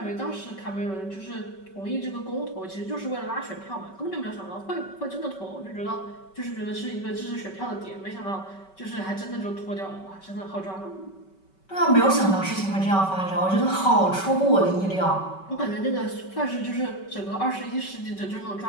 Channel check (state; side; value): late; right; 5.2 ms